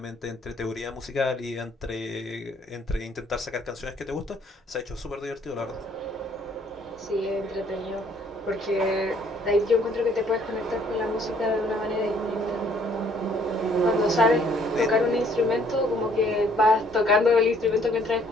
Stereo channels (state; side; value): normal; both; correlation 0.62